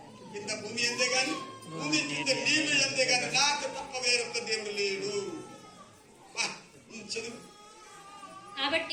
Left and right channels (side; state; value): both; identical; correlation 1.00